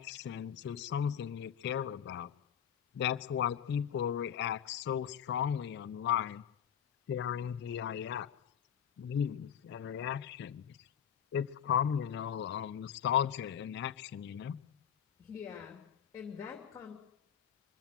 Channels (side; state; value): right; quieter; 8.9 dB